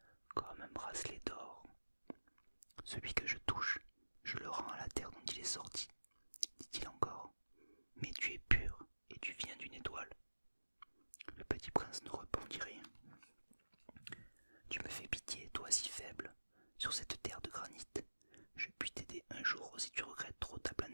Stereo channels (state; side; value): inverted; both; correlation -1.00